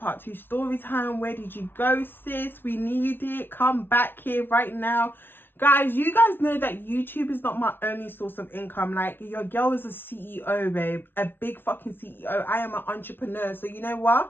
two story time? Where did you go, sis? We need it. Come back here right now. Guys, you guys know that YouTube is not my only source of income. Like, your girl is a CEO, babe. A big fucking CEO. I am an entrepreneur. So you know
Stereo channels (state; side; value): late; right; 0.10 ms